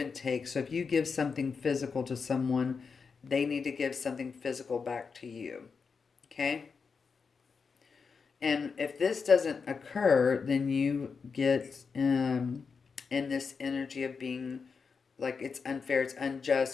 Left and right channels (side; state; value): right; quieter; 5.4 dB